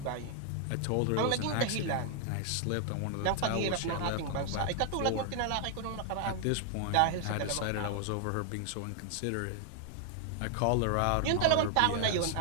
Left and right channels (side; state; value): both; different; correlation 0.00